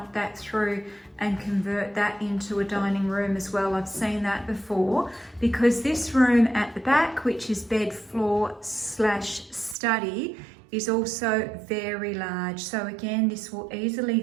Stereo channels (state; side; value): drops out; left; at 9.8 s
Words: that through and convert that into a dining room as well. I've seen that before, because this room at the back, which is bed floor / study, is also very large. So again, this will easily